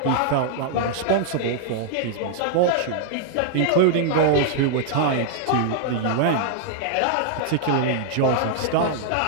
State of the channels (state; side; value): different; both; correlation -0.01